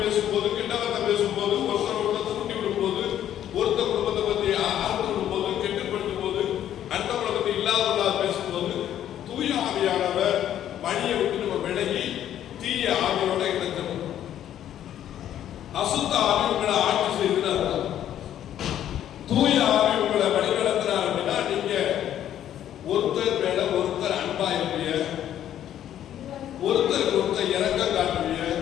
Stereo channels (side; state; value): right; quieter; 11.1 dB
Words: பேசும்போது, கிட்டவத்தை பேசும்போது, ஒருத்தர் குடும்பத்தை தூண்டி விடும்போது, ஒருத்தர் குடும்பத்தை பத்தி அறுத்து விடும்போது, கெட்டுப்படுத்தும் போது, அடுத்தவங்களை பத்தி இல்லாத பேசும்போது, தூய ஆவியானவர் வழியை விட்டு நம்ம விலகி தீய ஆவியோட இணைக்கணும். அசுத்த ஆவி உங்களை ஆட்சி செய்கிறார். தூய ஆவி உங்களை வழிநடத்துறார் அப்படின்னா நீங்க ஒருத்தர் மேல ஒருத்தர் அன்பா இருப்பீங்க, ஒருத்தருக்கு ஒருத்தர் இரக்கம் காட்டுவீங்க,